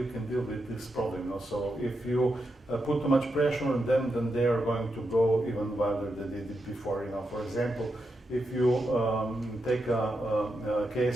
can deal with this problem. You know? So if you put too much pressure on them, then they are going to go even wilder than they did before. You know, for example, if you take a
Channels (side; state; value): both; normal; correlation 0.85